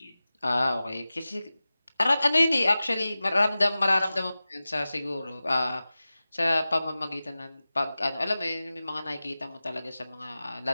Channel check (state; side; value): inverted; both; correlation -0.96